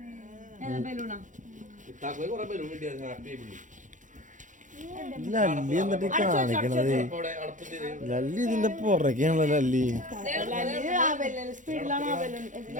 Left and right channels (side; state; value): left; late; 0.37 ms